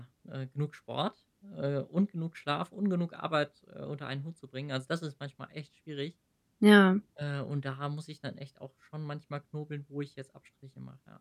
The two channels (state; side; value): identical; both; correlation 1.00